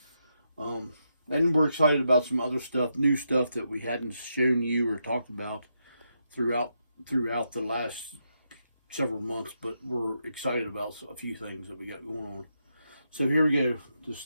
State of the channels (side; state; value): both; inverted; correlation -0.82